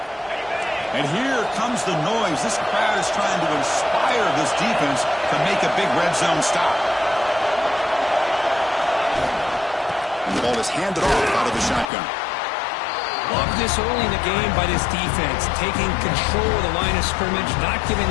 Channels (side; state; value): right; drops out; at 11.9 s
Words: And here comes the noise. This crowd is trying to inspire this defense to make a big red zone stop. And the ball is handed off out of the shotgun. Love this early in the game by this defense, taking control of the line of scrimmage, not giving